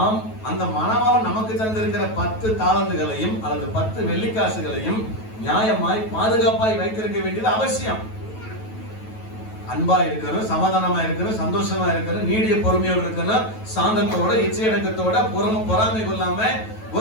அந்த மணவாளன் நமக்கு தந்திருக்கிற 10 தாலந்துகளையும் அல்லது 10 வெள்ளிக்காசுகளையும் நியாயமாய் பாதுகாப்பாய் வைத்திருக்க வேண்டியது அவசியம். அன்பா இருக்கணும், சமாதானமா இருக்கணும், சந்தோஷமா இருக்கணும், நீடிய பொறுமையோடு இருக்கணும், சாந்தத்தோட இச்சையடக்கத்தோட பொறாமை கொள்ளாம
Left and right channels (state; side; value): late; right; 9.2 ms